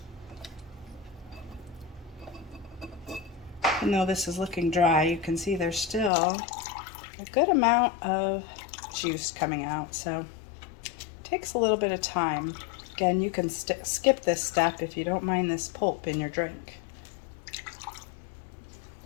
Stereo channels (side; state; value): right; drops out; at 6.1 s